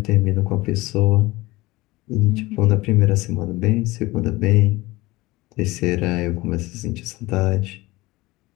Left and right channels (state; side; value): quieter; right; 20.5 dB